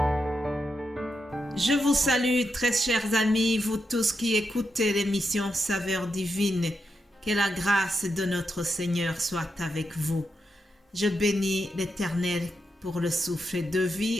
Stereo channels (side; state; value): both; normal; correlation 0.85